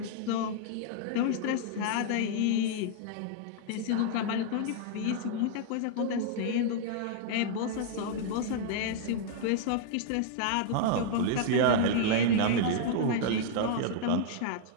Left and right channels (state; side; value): different; both; correlation -0.01